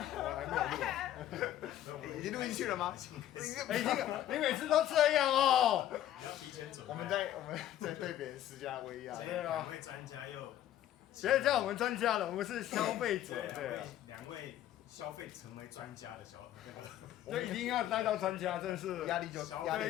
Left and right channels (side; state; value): right; quieter; 12.3 dB